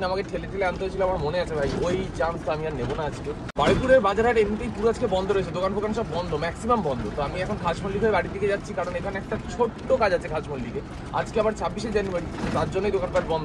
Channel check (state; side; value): identical; both; correlation 1.00